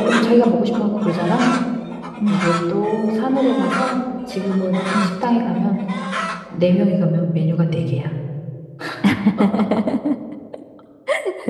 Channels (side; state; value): both; identical; correlation 1.00